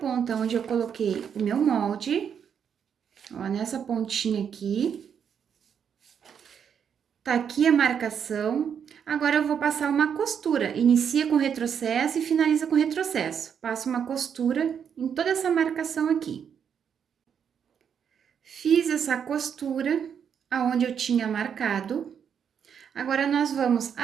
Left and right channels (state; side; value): quieter; left; 7.7 dB